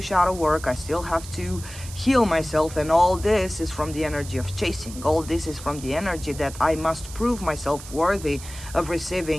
shadow work, I still have to heal myself, and all this is from the energy of chasing. All this is from the energy that I must prove myself worthy of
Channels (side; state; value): right; noise; hiss, 14 dB below the sound